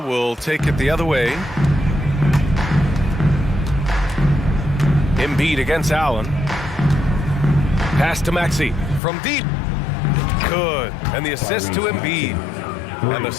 take it the other way. Embiid against Allen. Pass to Maxey from deep. Good. And the assist to Embiid. And the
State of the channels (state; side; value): drops out; right; at 9.0 s